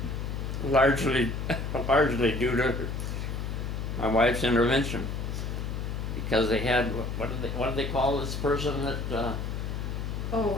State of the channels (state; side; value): noise; left; hum, 4 dB below the sound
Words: largely due to my wife's intervention, because they had, what do they call this person that,